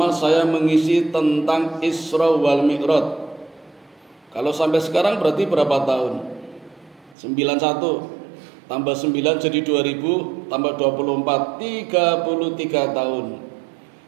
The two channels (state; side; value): drops out; left; at 7.2 s